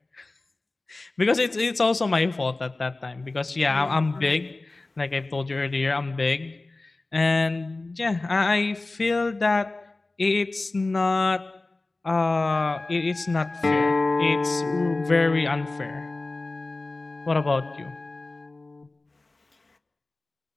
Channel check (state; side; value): quieter; right; 3.2 dB